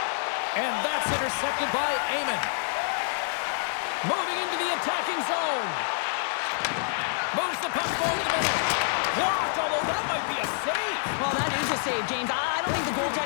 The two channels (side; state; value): right; silent; 60 dB below the other